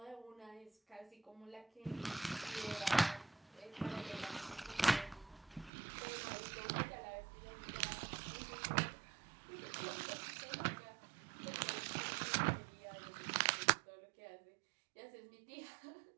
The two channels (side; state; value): left; drops out; at 5.7 s